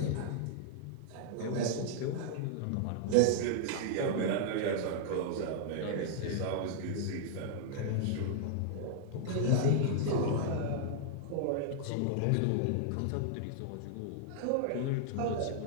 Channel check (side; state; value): both; different; correlation -0.01